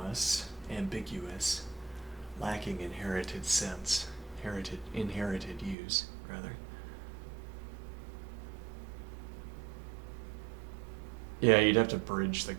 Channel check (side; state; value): left; drops out; at 5.8 s